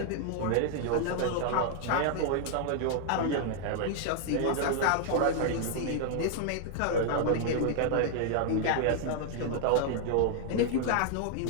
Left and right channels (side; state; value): both; different; correlation 0.00